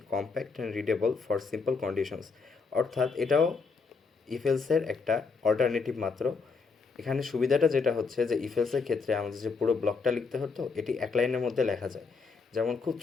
compact and readable for simple conditions. অর্থাৎ এটাও ইফেলসের একটা alternative মাত্র। এখানে সুবিধাটা যেটা হচ্ছে যে ইফেলসের ক্ষেত্রে আমাদের যে পুরো ব্লকটা লিখতে হতো এটি এক লাইনের মধ্যে লেখা যায়। যেমন খুব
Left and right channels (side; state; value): right; quieter; 4.8 dB